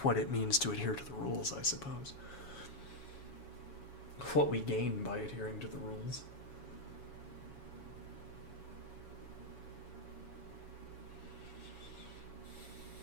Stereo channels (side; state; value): right; late; 7.2 ms